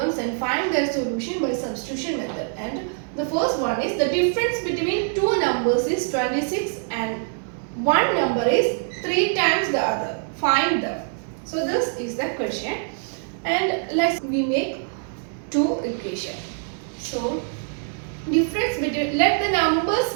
and find their solution by substitution method. And the first one is the difference between two numbers is 26 and one number is 3 times the other. Find them. So this is the question, and we make two equation. So difference between, let the numbers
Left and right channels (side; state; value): left; silent; 62 dB below the other